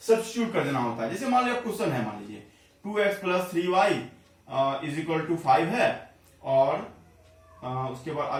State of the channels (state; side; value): identical; both; correlation 1.00